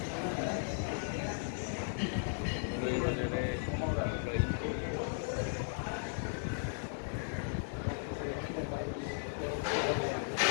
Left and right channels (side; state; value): right; silent; digital silence